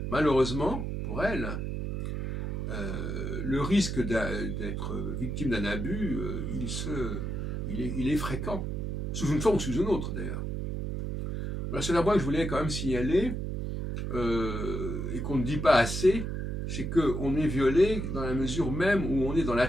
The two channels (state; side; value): noise; right; hum, 3 dB below the sound